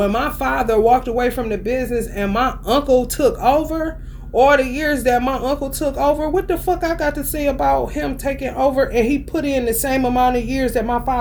my father walked away from the business and my uncle took over, all the years that my uncle took over, what the fuck I got to say about him taking over? And he put in the same amount of years that my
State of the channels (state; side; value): identical; both; correlation 1.00